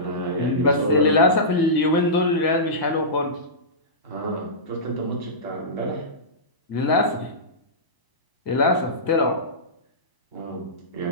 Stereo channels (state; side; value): late; right; 1.8 ms